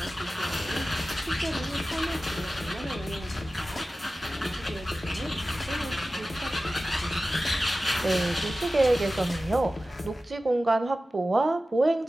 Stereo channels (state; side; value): normal; both; correlation 0.95